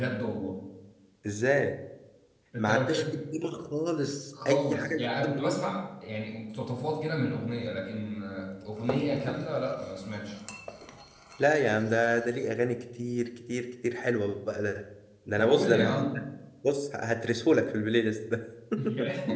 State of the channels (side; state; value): both; identical; correlation 1.00